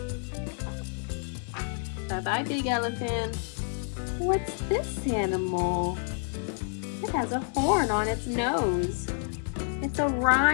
Bye-bye, big elephant. What's this animal? It has a horn on its nose. It's a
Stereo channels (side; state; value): right; silent; 59 dB below the other